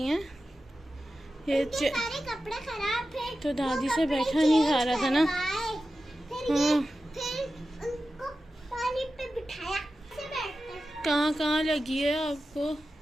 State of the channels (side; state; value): both; normal; correlation 0.93